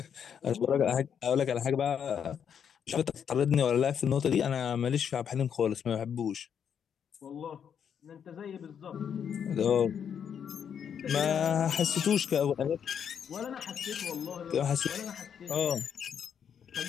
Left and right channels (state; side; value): quieter; right; 8.0 dB